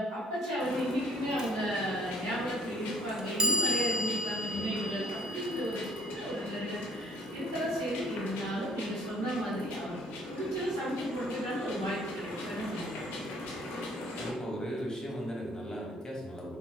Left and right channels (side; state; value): both; normal; correlation 0.59